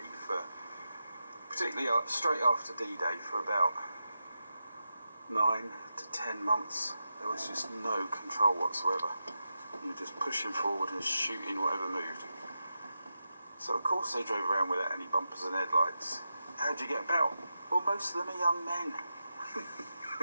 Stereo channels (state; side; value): inverted; both; correlation -0.89